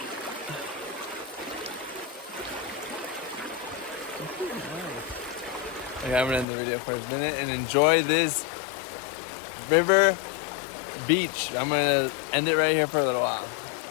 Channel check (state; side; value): drops out; right; at 6.5 s